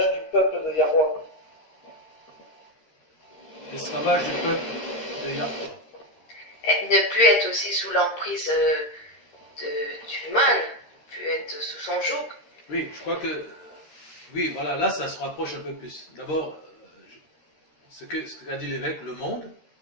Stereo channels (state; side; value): late; right; 13 ms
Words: du peuple de Yahweh. L'esclavage du peuple de Yahweh. Ne plus être aussi sous l'emprise du mal, ne plus être sous son joug. Oui, je crois que... Oui, voilà, là, ça se rapproche un peu plus. D'abord, ce qu'a dit l'évêque, le monde.